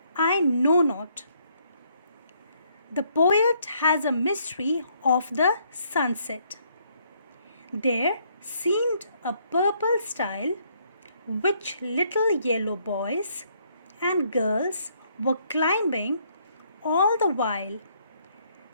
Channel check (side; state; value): both; inverted; correlation -0.69